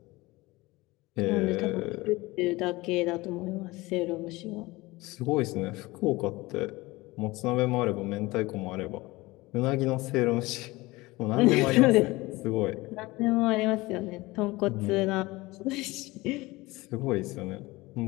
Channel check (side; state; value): right; quieter; 21.1 dB